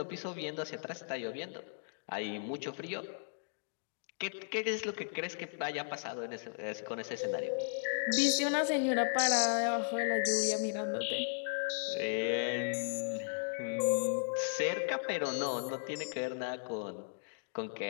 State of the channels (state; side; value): silent; right; digital silence